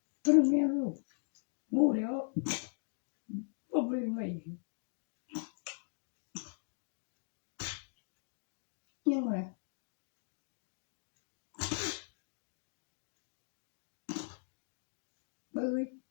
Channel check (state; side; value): silent; right; digital silence